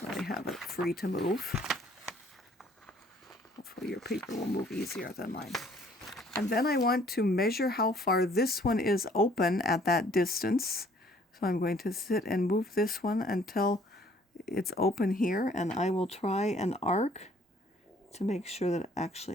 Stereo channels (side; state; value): both; normal; correlation 0.59